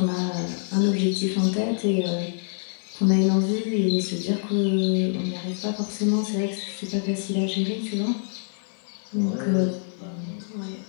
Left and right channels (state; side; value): silent; right; 56 dB below the other